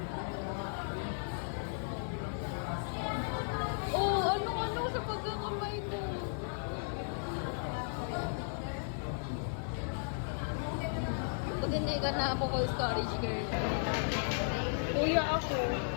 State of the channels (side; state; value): right; silent; digital silence